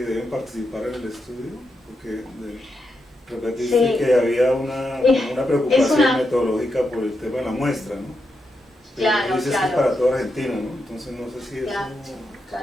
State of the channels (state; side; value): normal; both; correlation 0.85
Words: deben participar en el estudio? Porque repetiste que había una preocupación metodológica por el tema de la muestra, ¿no? Claro, dices que es para toda Argentina, ¿no? Entonces no sé si eso...